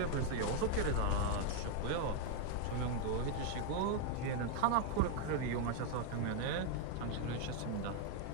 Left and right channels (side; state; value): both; different; correlation 0.00